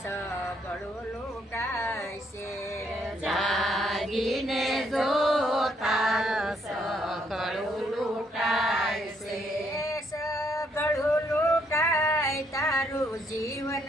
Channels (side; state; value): both; normal; correlation 0.72